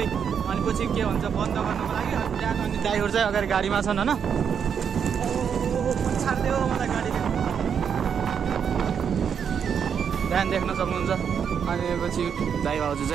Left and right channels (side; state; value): left; quieter; 7.4 dB